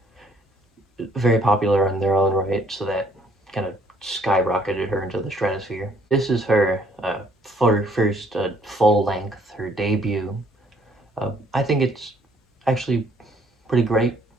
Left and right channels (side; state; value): both; normal; correlation 0.63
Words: very popular in their own right, so that kind of skyrocketed her into the stratosphere. This is her first full length, her debut. I think it's actually pretty great